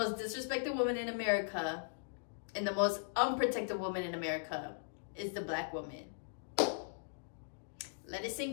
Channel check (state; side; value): silent; right; digital silence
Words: disrespected woman in America and the most unprotected woman in America is the black woman. Let it